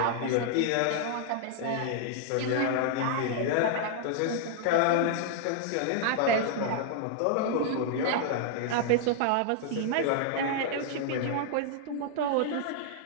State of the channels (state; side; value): different; both; correlation -0.01